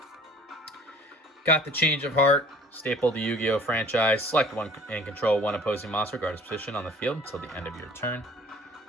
Got the Change of Heart. Staple the Yu-Gi-Oh! Franchise. Select 1 and control 1 opposing monster, regardless of position on the field until the end of your turn.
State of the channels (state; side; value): normal; both; correlation 0.51